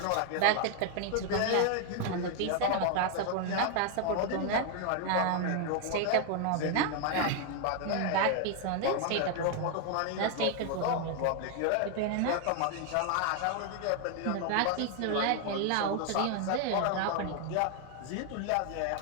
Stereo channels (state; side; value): different; both; correlation 0.00